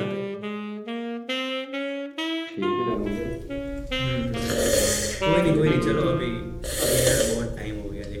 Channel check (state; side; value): identical; both; correlation 1.00